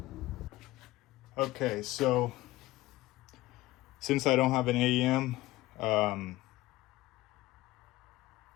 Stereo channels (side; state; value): right; quieter; 17.7 dB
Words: Okay, so since I don't have an AEM,